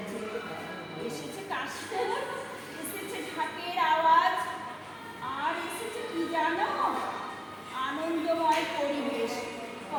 এসেছে কাশফুল, এসেছে ঢাকের আওয়াজ, আর এসেছে কি জানো, আনন্দময় পরিবেশ।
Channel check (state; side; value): identical; both; correlation 1.00